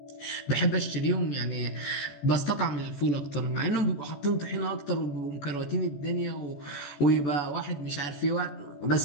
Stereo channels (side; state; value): right; late; 14 ms